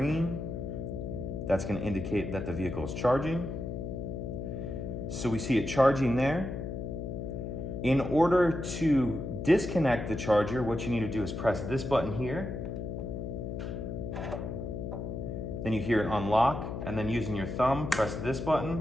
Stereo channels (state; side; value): noise; left; hum, 5 dB below the sound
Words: that's going to indicate that the vehicle is charging. So we see it charging there. In order to disconnect the charger, what you need to do is press this button here. Then you hear it unlock, and then using your thumb, press this